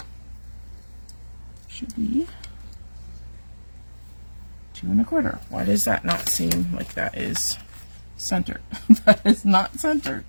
Should be 2 1/4. Why does that not seem like that is centered? That is not centered.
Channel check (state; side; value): inverted; both; correlation -1.00